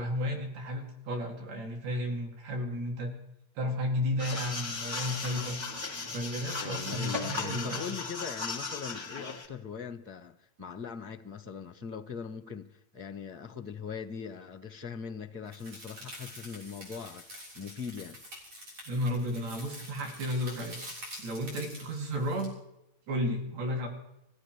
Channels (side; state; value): left; late; 8.8 ms